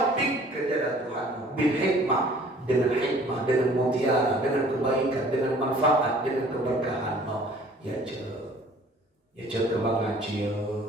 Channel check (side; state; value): both; normal; correlation 0.53